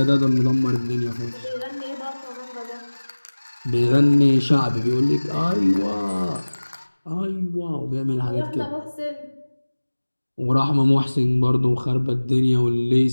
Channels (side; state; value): both; inverted; correlation -1.00